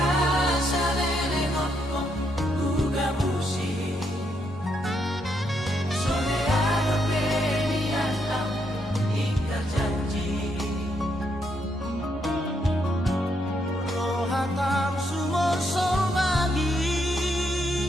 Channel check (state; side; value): normal; both; correlation 0.77